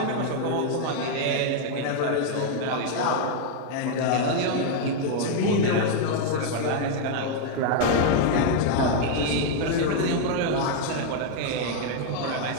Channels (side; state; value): both; different; correlation 0.00